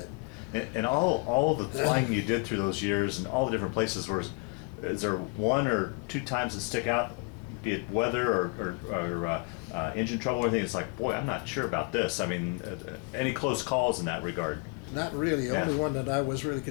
And all the flying you did through those years and all the different places, is there 1 or 2 times that stick out, be it weather or engine trouble or anything? It's like, boy, I'm not sure about this. Any close calls in that regard? Not really. The only one that I was really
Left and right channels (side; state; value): right; quieter; 32.1 dB